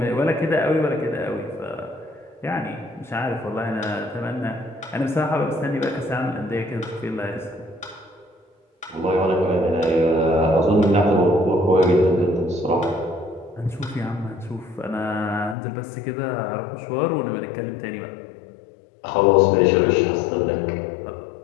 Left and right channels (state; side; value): drops out; right; at 15.6 s